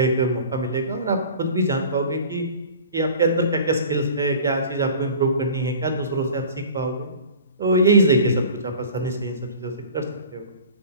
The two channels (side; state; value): both; inverted; correlation -0.42